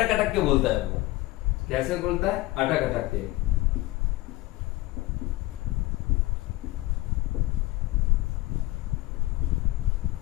अटक के बोलता है। वो कैसे बोलता है? अटक अटक के।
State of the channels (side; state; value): right; quieter; 19.3 dB